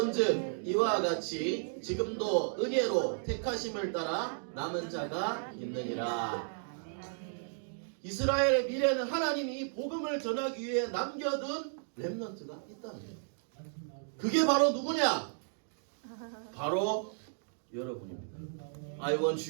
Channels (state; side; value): silent; left; digital silence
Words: 이와 같이 지금도 은혜로 택하심을 따라 남은 자가 있느니라. 이스라엘의 미래는 하나님이 이 복음을 전하기 위해 남겨둔 렘넌트가 있다는 거예요. 그게 바로 누구냐? 바로 여러분입니다. I